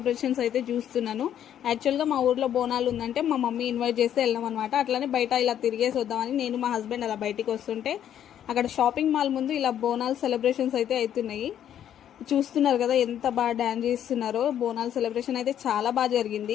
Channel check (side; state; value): right; quieter; 10.2 dB